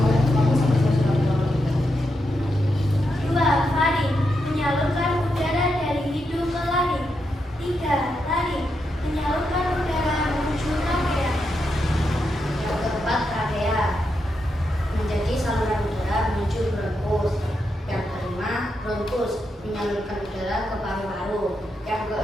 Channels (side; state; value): both; normal; correlation 0.84